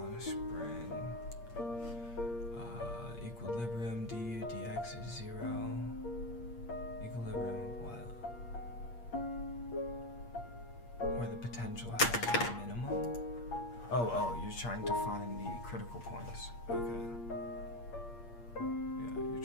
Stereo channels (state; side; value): late; right; 8.5 ms